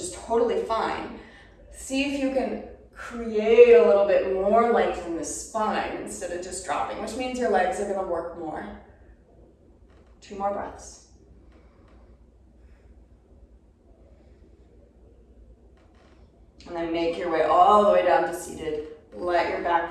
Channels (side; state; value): both; identical; correlation 1.00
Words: totally fine, see if you can create a little bit more length in the spine instead of just dropping, which means your legs are going to work more. 2 more breaths. And then make your way all the way down to seated. Let your